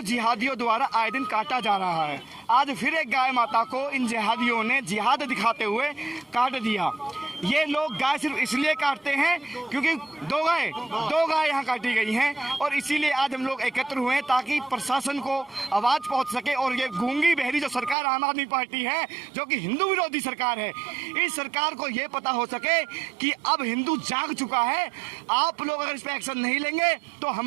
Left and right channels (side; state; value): left; drops out; at 17.9 s